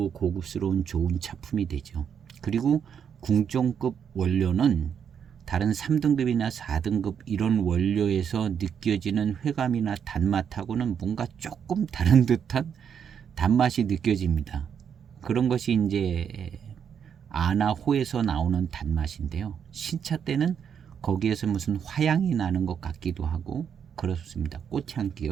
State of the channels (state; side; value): quieter; left; 7.7 dB